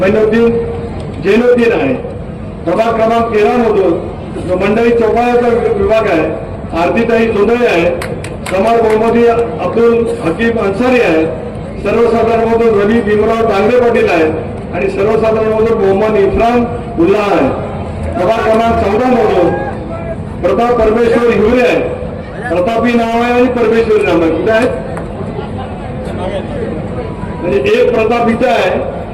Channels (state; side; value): identical; both; correlation 1.00